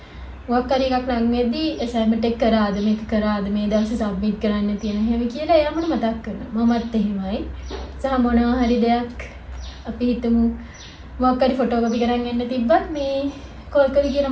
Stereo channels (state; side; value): identical; both; correlation 1.00